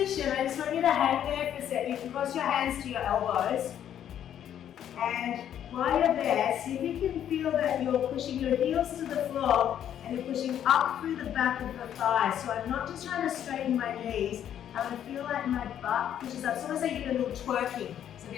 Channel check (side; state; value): right; quieter; 10.1 dB